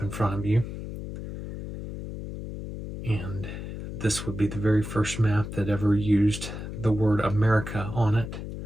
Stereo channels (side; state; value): left; noise; hum, 8 dB below the sound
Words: in front of you. And this would be the very first map that ever used the word America on it.